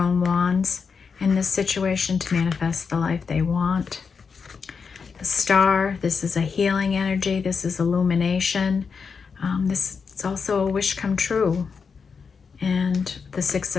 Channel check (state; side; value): quieter; right; 5.6 dB